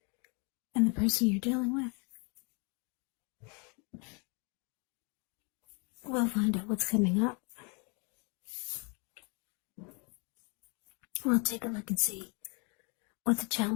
and the person you're dealing with. We'll find out what's coming up. We'll take a look and see what the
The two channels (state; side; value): quieter; right; 33.5 dB